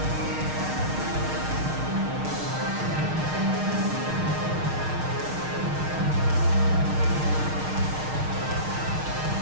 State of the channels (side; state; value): left; late; 6.5 ms